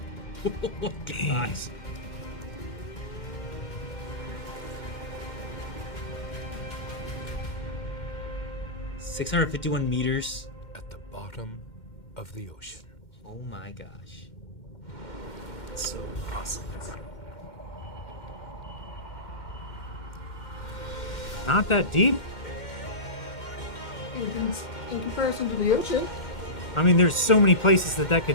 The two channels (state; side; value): late; right; 2.1 ms